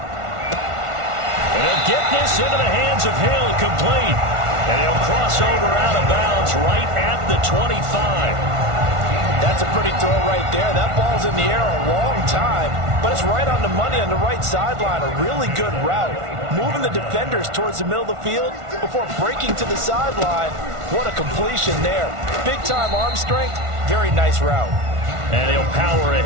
they'll get this into the hands of Hill, complete. And he'll cross over out of bounds right at the 25. That's a pretty throw right there. That ball's in the air a long time, but it's right on the money on the right sideline. A really good route. Moving the defenders towards the middle of the field before breaking to the sideline. What a completion there. Big-time arm strength. Very nice route. And he'll power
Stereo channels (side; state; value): left; late; 1.5 ms